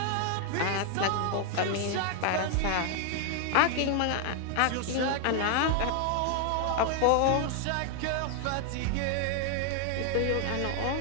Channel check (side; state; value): both; different; correlation 0.00